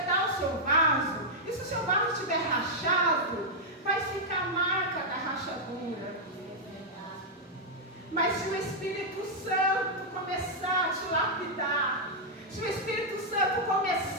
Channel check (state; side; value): normal; both; correlation -0.05